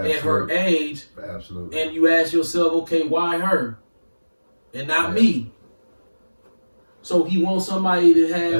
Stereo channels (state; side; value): inverted; both; correlation -1.00